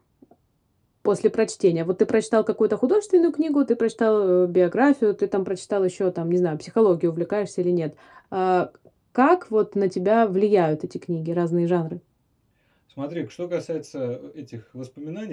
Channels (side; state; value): both; identical; correlation 1.00